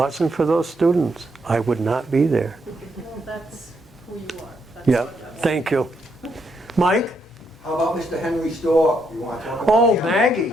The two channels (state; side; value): normal; both; correlation 0.77